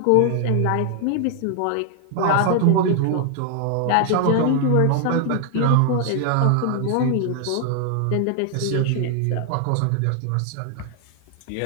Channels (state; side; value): different; both; correlation 0.00